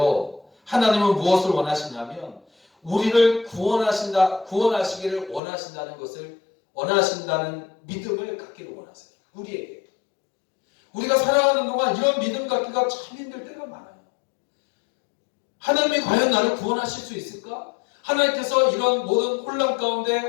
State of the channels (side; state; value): right; drops out; at 5.4 s